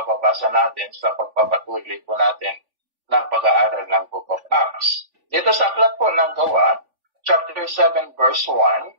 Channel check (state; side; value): late; left; 3.5 ms